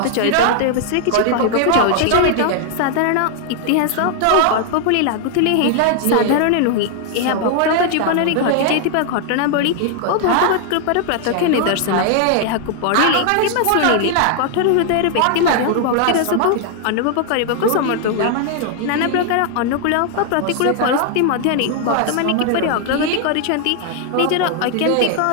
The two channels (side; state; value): both; different; correlation 0.00